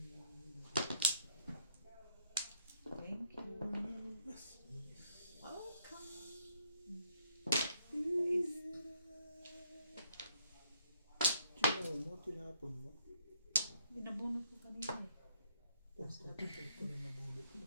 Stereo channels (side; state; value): both; inverted; correlation -0.70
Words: you. Welcome. Sino mo? Tinapon mo? Binabunot ko kanina eh. Porto na nabulot mo.